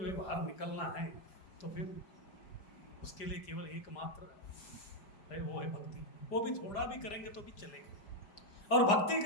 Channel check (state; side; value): late; right; 5.0 ms